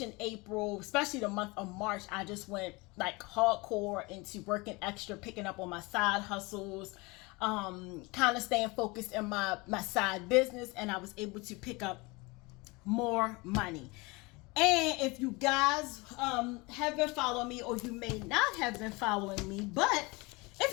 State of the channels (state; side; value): quieter; right; 25.3 dB